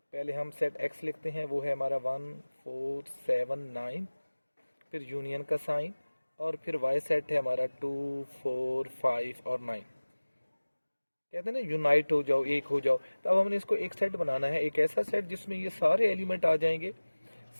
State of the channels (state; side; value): inverted; both; correlation -1.00